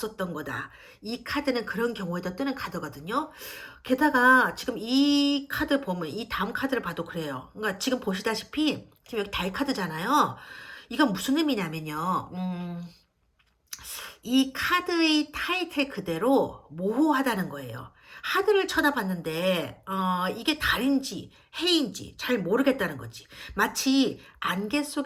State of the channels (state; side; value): identical; both; correlation 1.00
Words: 거다. 이 카드는 그런 경우에도 뜨는 카드거든요. 게다가 지금 이 카드 보면 이 다음 카드를 봐도 그래요. 그러니까 지금 보시다시피 지금 여기 달 카드잖아요. 이건 무슨 의미냐면요. 이 카드의 타이틀 그대로 모호하다는 거예요. 하늘을 쳐다봤는데 이게 달인지 해인지 잘 모르겠다는 거지. 마치 안개